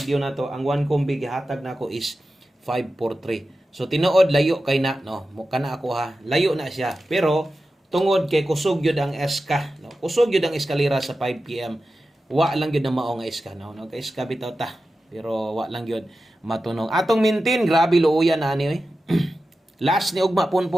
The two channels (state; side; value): normal; both; correlation 0.93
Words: nato ang one combi gihatag nako is 543 so tinuod layo kay na no mo kana ako ha layo na siya pero tungod kay kusog gyud ang eska no kusog gyud ang eskalera sa 5 PM wa lang gyud na mao nga eska no kay eska bitaw ta pero wa lang gyud matunong atong maintain grabe luoyan na ani oy last ni ugma